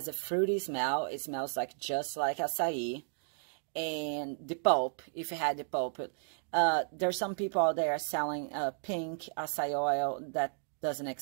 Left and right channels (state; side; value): silent; left; digital silence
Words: a fruity smell. It smells like just like acai. And the pulp, if you had the pulp, there's some people out there selling pink acai oil that doesn't